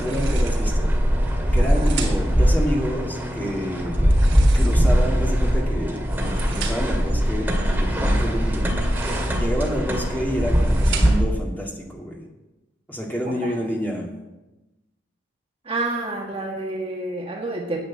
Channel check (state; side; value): normal; both; correlation 0.90